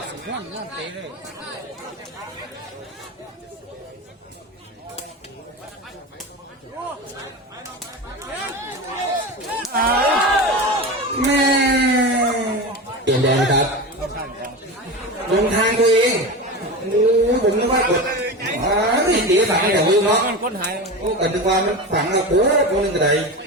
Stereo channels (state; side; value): normal; both; correlation 0.25